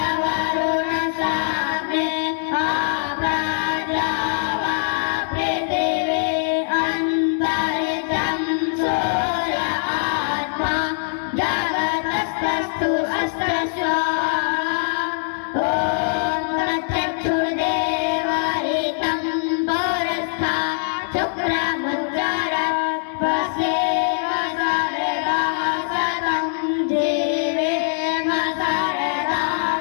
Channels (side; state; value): right; silent; digital silence